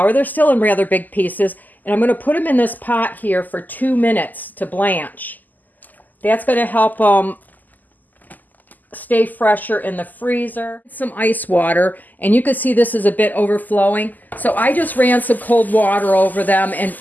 They're still in rather big pieces. And I'm going to put them in this pot here for 2 minutes to blanch. That's going to help them stay fresher in the freezer. Some ice water, and you can see this is a bit overflowing. So I just ran some cold water over them and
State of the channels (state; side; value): late; right; 0.084 ms